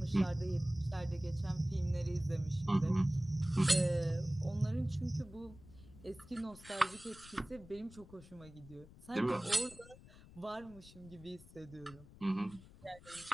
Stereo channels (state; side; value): noise; left; rumble, 20 dB below the sound